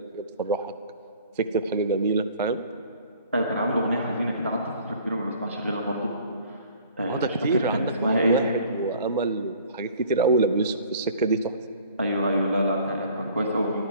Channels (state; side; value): inverted; both; correlation -0.52